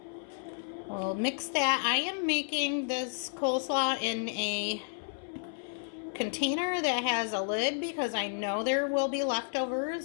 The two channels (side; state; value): right; silent; 57 dB below the other